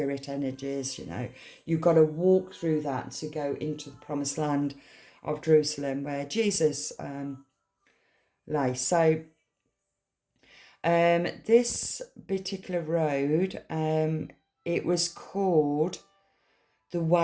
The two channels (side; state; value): both; identical; correlation 1.00